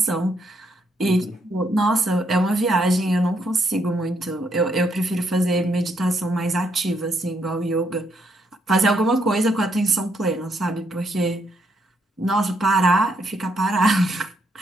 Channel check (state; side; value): normal; both; correlation 0.75